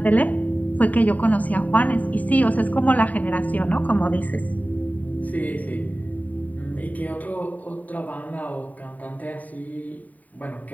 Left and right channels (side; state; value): right; late; 0.074 ms